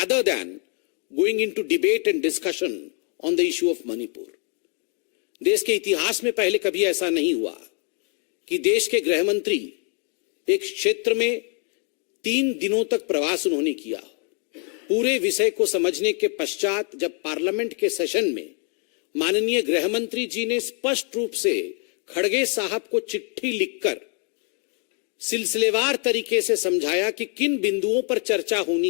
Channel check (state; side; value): quieter; right; 39.7 dB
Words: than going into debate and discussion on the issue of Manipur. देश के इतिहास में पहले कभी ऐसा नहीं हुआ कि देश के गृह मंत्री एक क्षेत्र में 3 दिनों तक प्रवास उन्होंने किया। पूरे विषय को समझने के पश्चात जब पार्लियामेंट के सेशन में माननीय गृह मंत्री जी ने स्पष्ट रूप से खड़गे साहब को चिट्ठी लिखकर सिलसिलेवार तरीके से समझाया कि किन बिंदुओं पर चर्चा